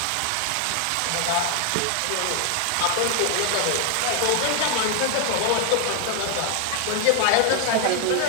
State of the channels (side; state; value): both; different; correlation 0.00